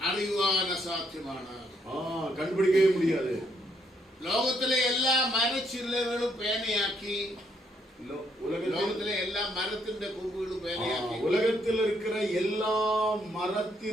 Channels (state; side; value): normal; both; correlation 0.72